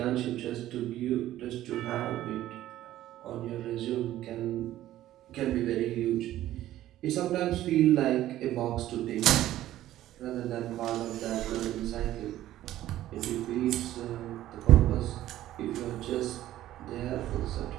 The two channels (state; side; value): quieter; left; 13.8 dB